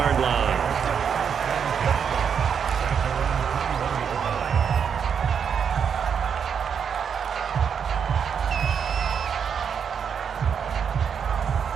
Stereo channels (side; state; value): left; quieter; 7.2 dB